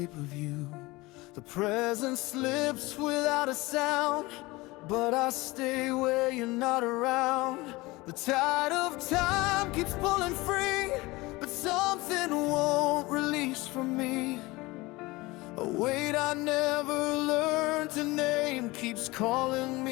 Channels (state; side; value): quieter; right; 21.7 dB